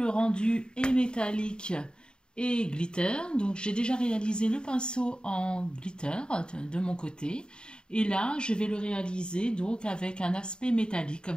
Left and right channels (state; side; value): late; right; 0.049 ms